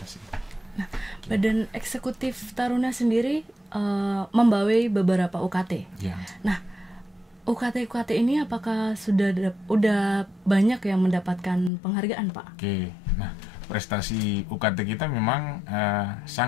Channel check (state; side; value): drops out; right; at 11.7 s